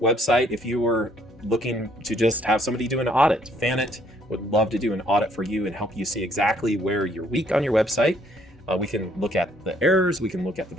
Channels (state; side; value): normal; both; correlation 0.65